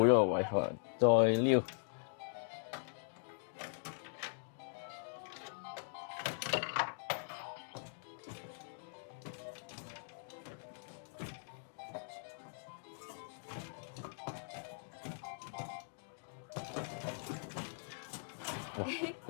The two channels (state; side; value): silent; right; digital silence